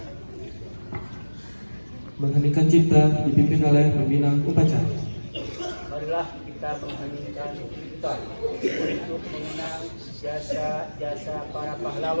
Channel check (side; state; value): both; inverted; correlation -1.00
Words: Mengheningkan cipta dipimpin oleh pembina upacara. Marilah kita mengheningkan cipta untuk mengenang jasa-jasa para